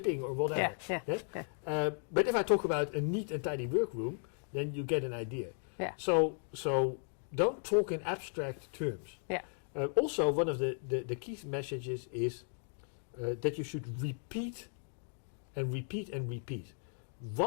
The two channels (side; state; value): right; silent; 54 dB below the other